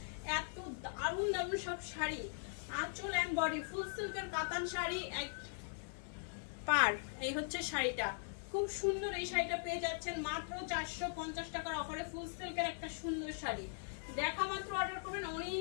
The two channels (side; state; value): right; silent; 51 dB below the other